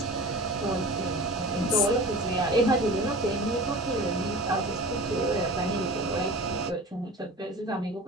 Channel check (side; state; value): both; normal; correlation 0.37